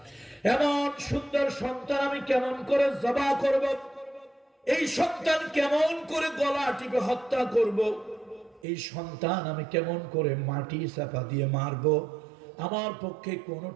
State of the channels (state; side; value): drops out; left; at 8.7 s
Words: এমন সুন্দর সন্তান আমি কেমন করে জবাহ করব, এই সন্তান কেমন করে গলা টিপে হত্যা করব, এই সন্তান আমি কেমন করে মাটি চাপা দিয়ে মারব, আমার পক্ষে